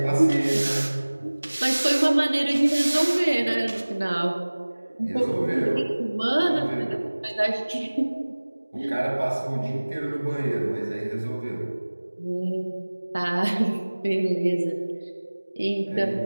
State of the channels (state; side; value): inverted; both; correlation -1.00